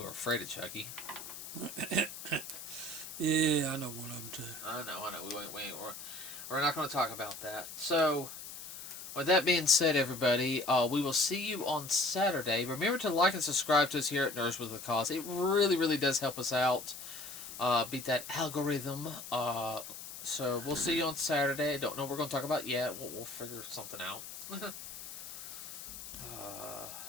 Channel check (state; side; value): noise; left; hiss, 11 dB below the sound